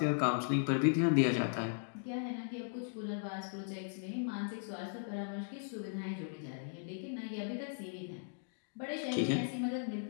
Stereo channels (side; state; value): right; silent; digital silence